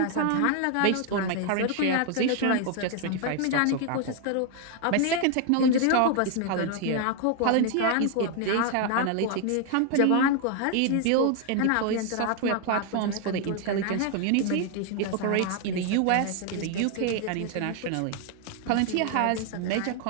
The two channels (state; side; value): different; both; correlation 0.00